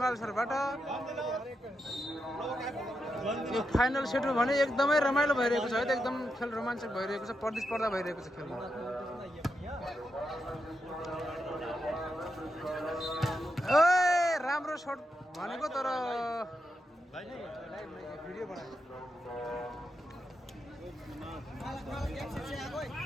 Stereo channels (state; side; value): normal; both; correlation 0.85